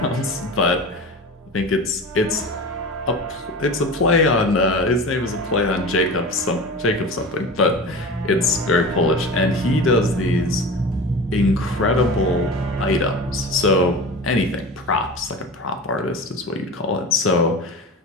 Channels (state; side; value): normal; both; correlation 0.31